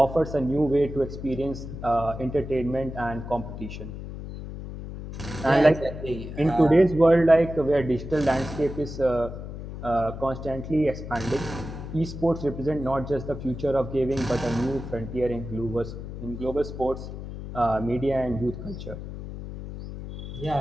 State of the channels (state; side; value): noise; left; hum, 9 dB below the sound